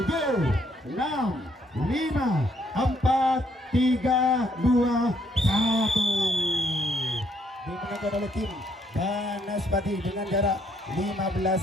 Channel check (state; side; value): normal; both; correlation 0.70